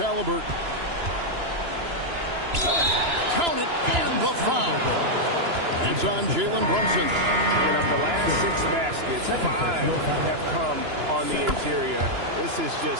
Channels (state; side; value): late; left; 2.9 ms